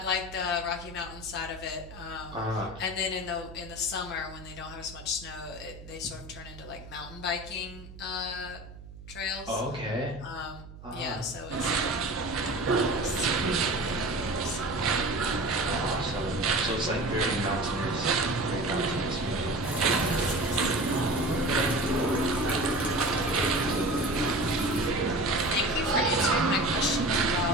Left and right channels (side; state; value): right; noise; hum, 16 dB below the sound